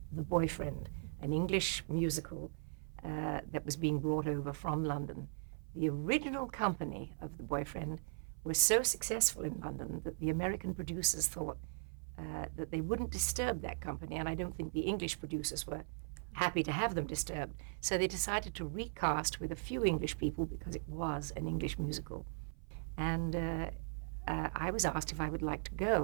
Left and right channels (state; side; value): silent; left; 52 dB below the other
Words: The Boyfriend, an English musical that was being brought over from London. The original company of The Boyfriend was so successful in London that the American producers thought that they wouldn't disturb that company, and I don't think the English producers were happy to have them disturbed. So they decided to recast with a few English people because it was an English musical. And I was asked if I would like to